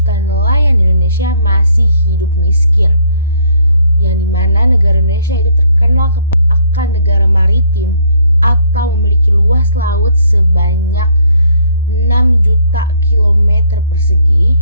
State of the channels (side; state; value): both; inverted; correlation -0.65